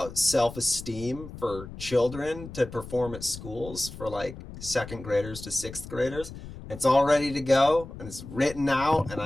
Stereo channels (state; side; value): noise; left; rumble, 13 dB below the sound